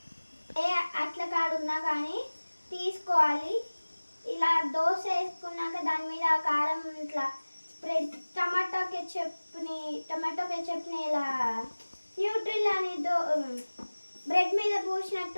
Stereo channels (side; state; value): both; inverted; correlation -1.00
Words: అట్ల కాడున్నా కానీ తీసుకోవాలి. ఇలా దోశ వేసుకున్నాక దాని మీద ఆ కారం ఇట్లా స్ప్రెడ్, టమాటో కెచప్ని ఇలా న్యూట్రిల్ అని బ్రెడ్ మీద